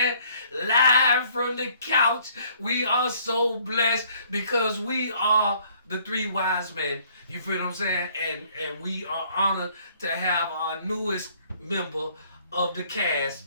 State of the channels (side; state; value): both; inverted; correlation -0.61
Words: Live from the couch, we are so blessed because we are the 3 wise men. You feel what I'm saying? And we are honored to have our newest member of the cast,